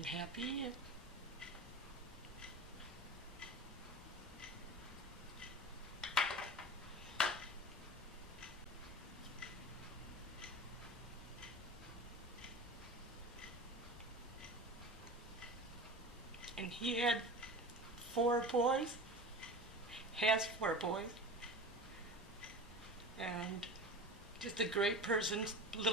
happy. And he had 4 boys, has 4 boys, and just a great person,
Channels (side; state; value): both; normal; correlation 0.32